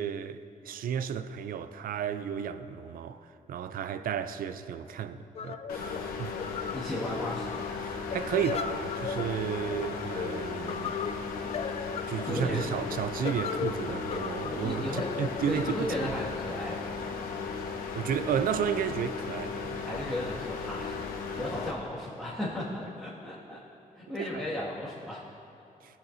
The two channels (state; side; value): normal; both; correlation 0.38